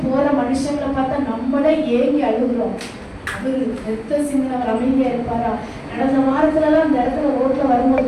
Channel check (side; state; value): both; identical; correlation 1.00